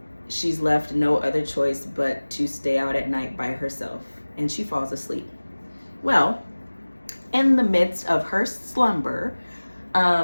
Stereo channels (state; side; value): inverted; both; correlation -1.00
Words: she's left no other choice but to stay out at night by herself, and she falls asleep. Well, in the midst of her slumber,